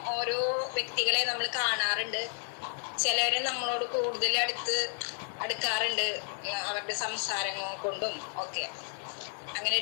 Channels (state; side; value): silent; right; 57 dB below the other